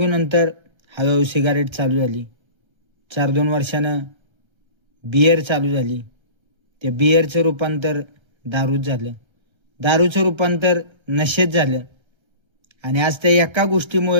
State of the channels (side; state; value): left; late; 1.3 ms